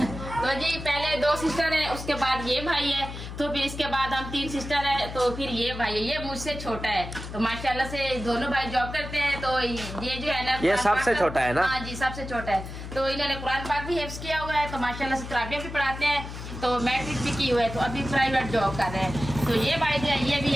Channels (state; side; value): noise; left; hum, 9 dB below the sound